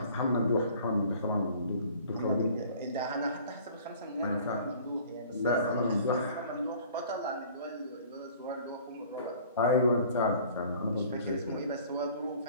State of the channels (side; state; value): both; inverted; correlation -0.50